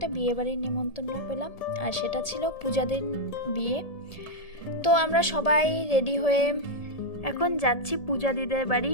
বিয়ে বাড়ির নিমন্ত্রণ পেলাম, আর সেটা ছিল পূজাদের বিয়ে। তো আমরা সবাই রেডি হয়ে এখন যাচ্ছি পূজা দিদের বাড়ি,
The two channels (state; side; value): late; right; 1.7 ms